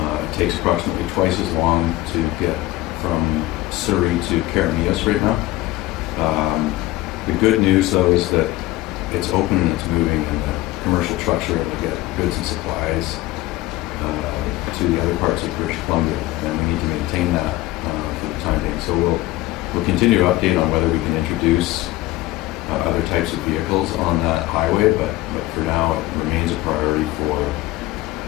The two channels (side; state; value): right; quieter; 17.6 dB